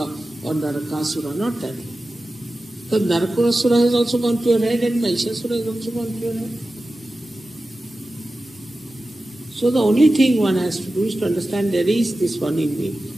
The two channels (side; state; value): both; normal; correlation 0.94